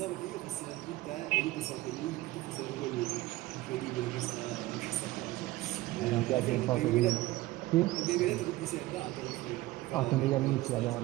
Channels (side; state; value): left; quieter; 17.9 dB